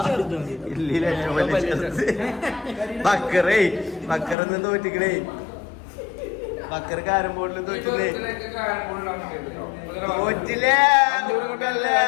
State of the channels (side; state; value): right; drops out; at 4.4 s